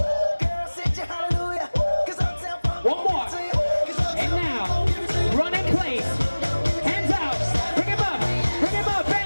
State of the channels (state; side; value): inverted; both; correlation -1.00